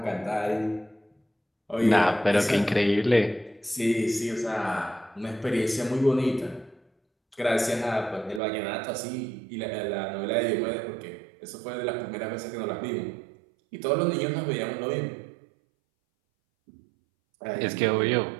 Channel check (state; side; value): drops out; left; at 8.4 s